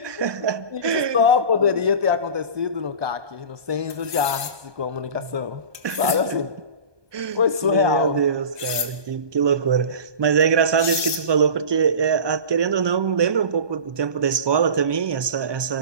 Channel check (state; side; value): late; left; 1.2 ms